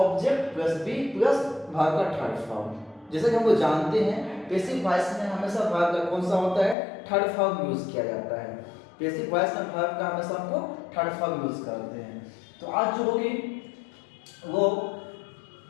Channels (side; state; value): right; drops out; at 6.8 s